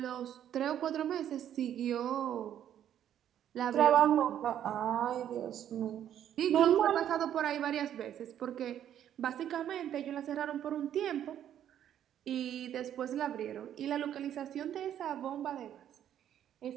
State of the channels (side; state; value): left; quieter; 10.4 dB